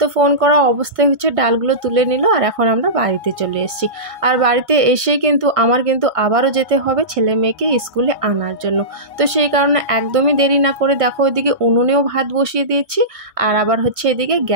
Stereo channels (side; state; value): left; late; 1.5 ms